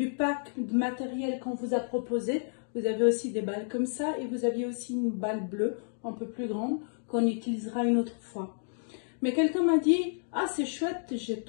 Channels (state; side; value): silent; right; digital silence